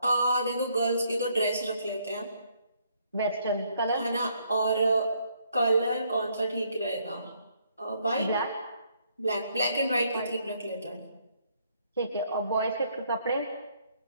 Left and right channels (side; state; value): both; inverted; correlation -0.70